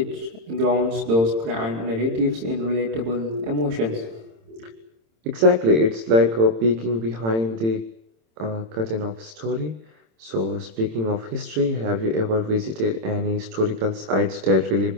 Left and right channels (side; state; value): left; late; 26 ms